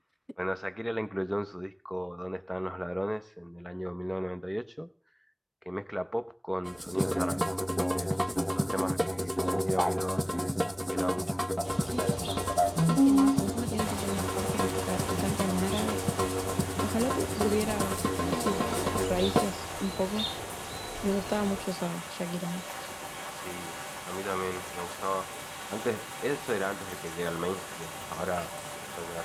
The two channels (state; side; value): identical; both; correlation 1.00